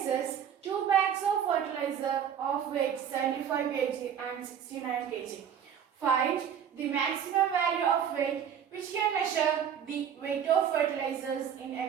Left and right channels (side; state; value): left; quieter; 8.5 dB